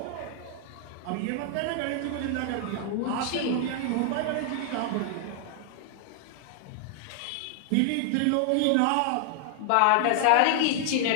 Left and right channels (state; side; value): different; both; correlation 0.00